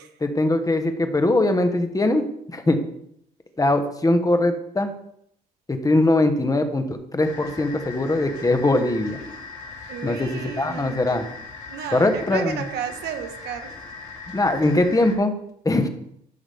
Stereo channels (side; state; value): both; normal; correlation 0.79